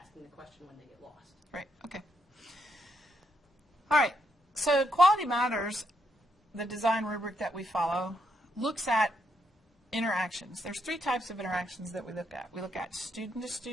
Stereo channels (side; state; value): both; normal; correlation 0.78